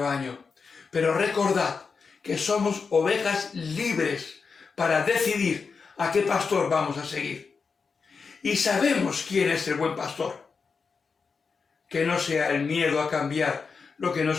pero recordad que somos ovejas libres para decidir a qué pastor vamos a seguir. Y sabemos quién es el buen pastor. Que no sea el miedo a cambiar lo que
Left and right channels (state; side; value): quieter; right; 5.1 dB